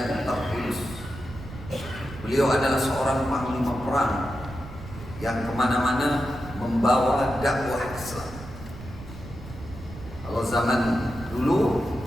tertulus. Beliau adalah seorang panglima perang yang kemana-mana membawa dakwah Islam. Kalau zaman dulu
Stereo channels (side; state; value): right; noise; rumble, 14 dB below the sound